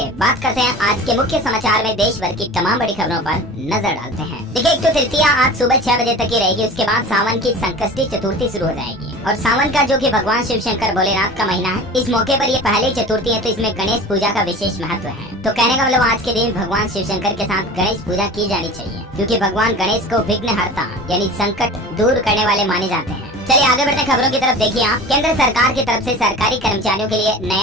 बात करते हैं आज के मुख्य समाचार में देश भर की तमाम बड़ी खबरों पर नजर डालते हैं। देखिए, एक तो तृतीया आज सुबह 6 बजे तक ही रहेगी। उसके बाद सावन की संकष्टी चतुर्थी शुरू हो जाएगी। और सावन का जो कि भगवान शिव शंकर भोलेनाथ का महीना है, इस मौके पर ये पहली चतुर्थी है, तो इसमें गणेश पूजा का विशेष महत्व है। तो कहने का मतलब आज के दिन भगवान शिव शंकर के साथ गणेश पूजा की जानी चाहिए, क्योंकि भगवान गणेश को विघ्नहर्ता यानी संकट दूर करने वाले माने जाते हैं। चलिए आगे बढ़ते खबरों की तरफ। देखिए आप, केंद्र सरकार की तरफ से सरकारी कर्मचारियों के लिए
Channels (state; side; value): normal; both; correlation 0.37